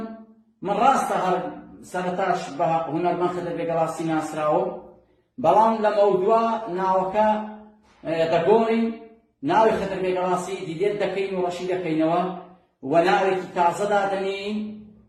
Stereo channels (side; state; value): both; identical; correlation 1.00